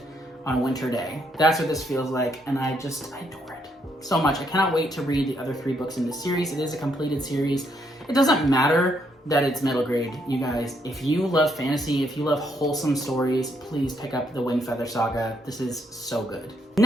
on a winter day. That's what this feels like, and I adore it so much. I cannot wait to read the other 3 books in this series. It is a completed series. It doesn't matter that it's middle grade, you guys. If you love fantasy, if you love wholesome stories, please pick up the Winged Feather Saga. This is so good.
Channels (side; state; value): both; normal; correlation 0.73